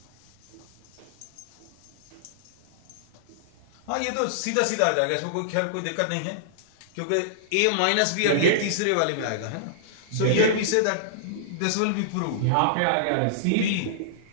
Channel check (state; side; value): different; both; correlation -0.02